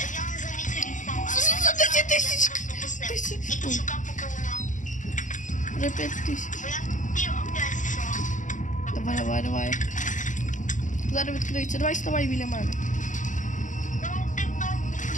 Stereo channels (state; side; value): late; right; 0.37 ms